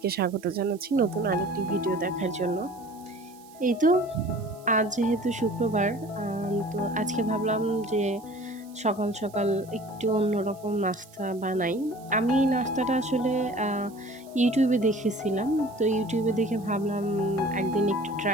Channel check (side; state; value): right; noise; hiss, 25 dB below the sound